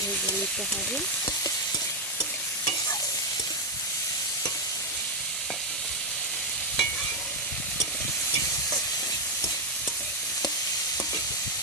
ভেজে নিতে হবে।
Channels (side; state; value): both; normal; correlation 0.04